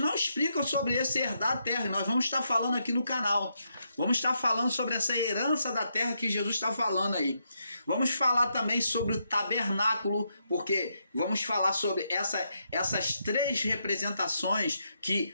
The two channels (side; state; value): both; inverted; correlation -0.80